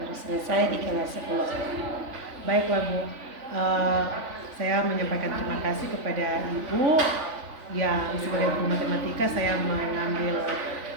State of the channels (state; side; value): late; left; 3.5 ms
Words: baru selesai di kelas 10. Baiklah Bu, saya menyampaikan terima kasih kepada Ibu yang sebagai guru matematika saya mengambil